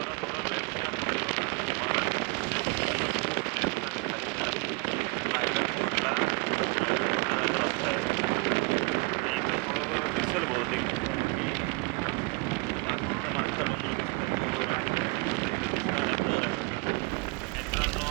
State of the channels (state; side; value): quieter; left; 29.8 dB